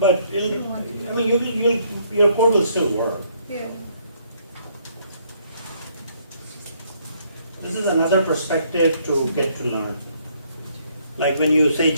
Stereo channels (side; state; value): both; inverted; correlation -0.68